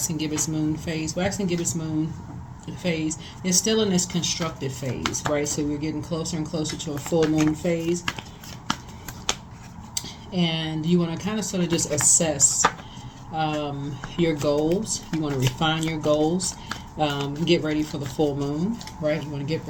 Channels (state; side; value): identical; both; correlation 1.00